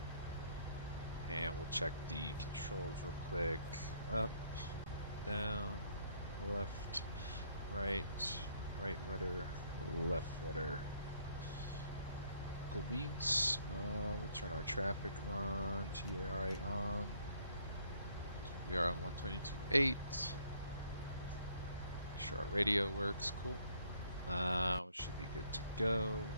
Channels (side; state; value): both; inverted; correlation -0.66